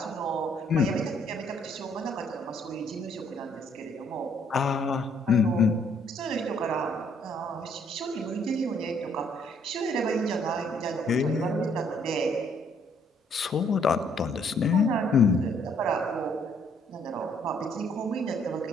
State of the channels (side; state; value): both; normal; correlation 0.66